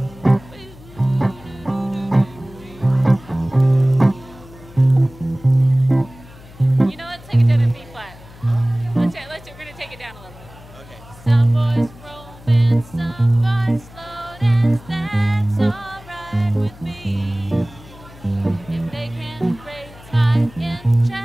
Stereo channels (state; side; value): noise; left; hum, 20 dB below the sound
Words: You know, let's take it down in B flat. We're gonna take it down a little bit. okay. Some boys romance, some boys slow dance. That's alright with me. If they can raise my